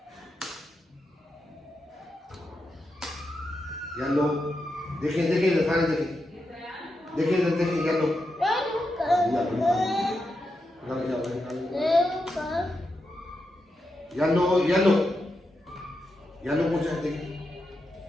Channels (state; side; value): normal; both; correlation 0.86